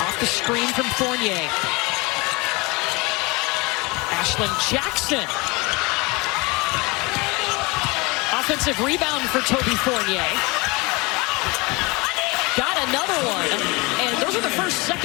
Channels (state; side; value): quieter; right; 25.7 dB